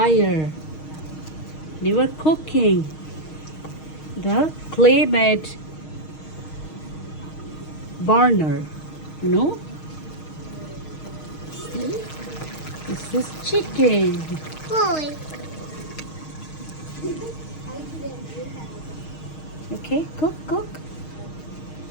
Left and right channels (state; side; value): late; right; 6.4 ms